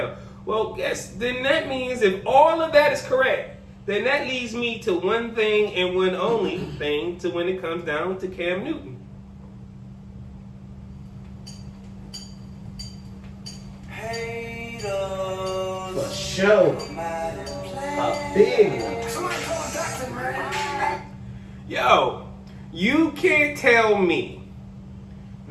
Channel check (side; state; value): both; identical; correlation 1.00